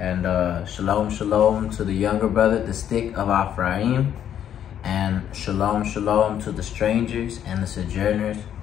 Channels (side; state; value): right; quieter; 9.8 dB